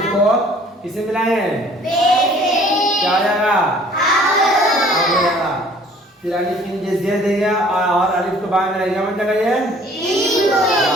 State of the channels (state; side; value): normal; both; correlation 0.54